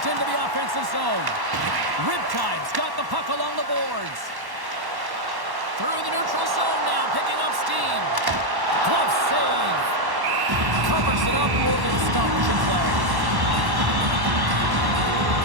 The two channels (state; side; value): late; left; 1.1 ms